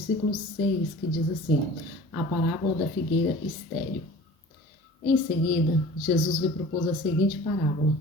6, que diz assim: a parábola da figueira estéril. Em seguida, Jesus lhe propôs a seguinte parábola:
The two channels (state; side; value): normal; both; correlation 0.43